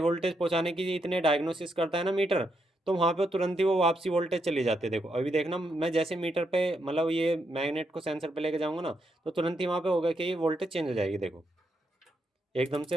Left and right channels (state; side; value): normal; both; correlation 0.80